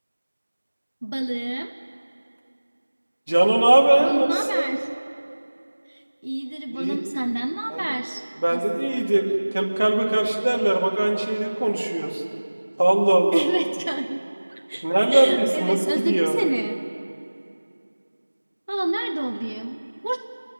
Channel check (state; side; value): inverted; both; correlation -1.00